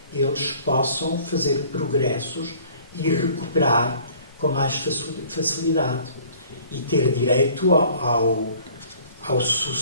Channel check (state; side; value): inverted; both; correlation -0.53